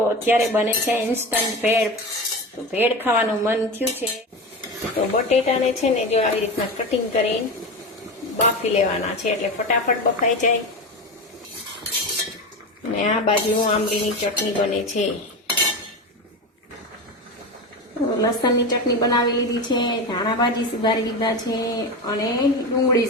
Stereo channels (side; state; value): both; normal; correlation 0.23